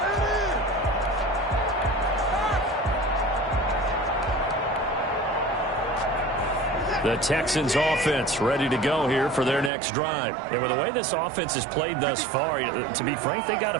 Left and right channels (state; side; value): drops out; left; at 9.7 s